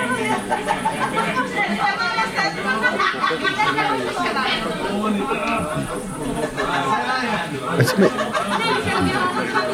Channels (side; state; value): both; identical; correlation 1.00